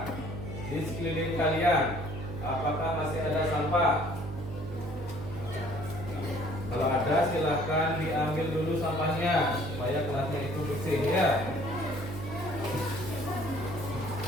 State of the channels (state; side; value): noise; right; hum, 9 dB below the sound